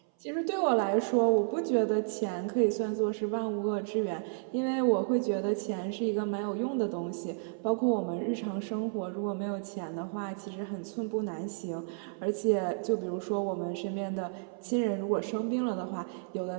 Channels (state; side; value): silent; left; 57 dB below the other